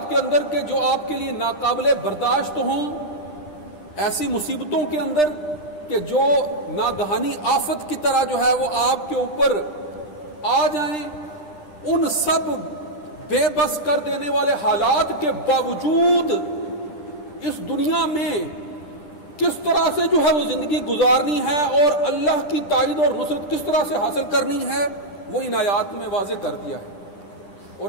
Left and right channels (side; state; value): right; late; 10 ms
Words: کے اندر کہ جو آپ کے لیے ناقابل برداشت ہوں، ایسی مصیبتوں کے اندر کہ جو ناگہانی آفت کی طرح جو ہے وہ آپ کے اوپر آ جائیں، ان سب بے بس کر دینے والے حالات کے باوجود اس دنیا میں کس طرح سے جو ہے وہ زندگی گزارنی ہے اور اللہ کی تائید اور نصرت کس طرح سے حاصل کرنی ہے، وہ ان آیات میں واضح کر دیا ہے۔